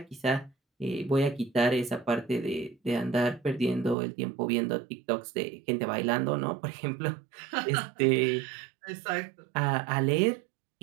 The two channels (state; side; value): drops out; left; at 4.0 s